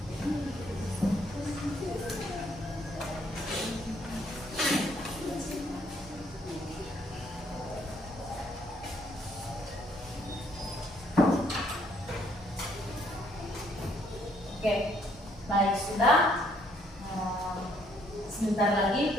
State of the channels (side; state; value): both; normal; correlation 0.67